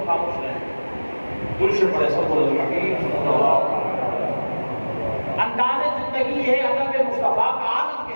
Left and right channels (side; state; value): both; inverted; correlation -1.00